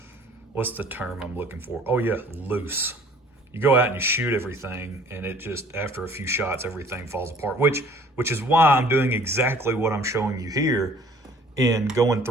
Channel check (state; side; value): normal; both; correlation 0.53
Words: what's the term I'm looking for? Oh yeah, loose. You go out and you shoot everything, and it just, after a few shots, everything falls apart, which is why I'm doing exactly what I'm showing you here, in going